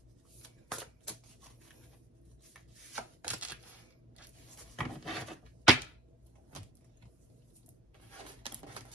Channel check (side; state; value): both; normal; correlation 0.46